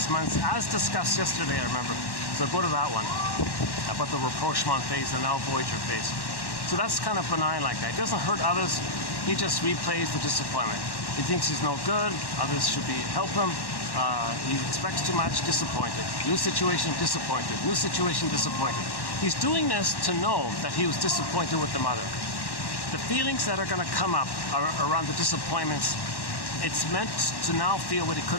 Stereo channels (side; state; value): right; late; 1.1 ms